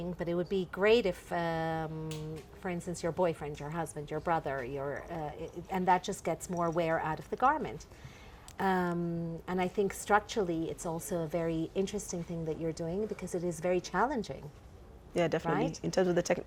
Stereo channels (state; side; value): identical; both; correlation 1.00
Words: but it would be great if, for instance, your boyfriend, your husband, your brother, and that just gets more wear out of the garment. And I think structurally, it's also a very interesting thing that you're doing because it is very challenging. Yeah, definitely. Right? In terms of the